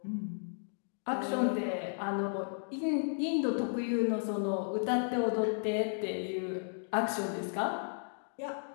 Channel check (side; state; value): right; silent; digital silence